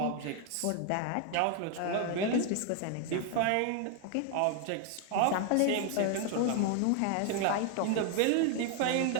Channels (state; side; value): different; both; correlation 0.00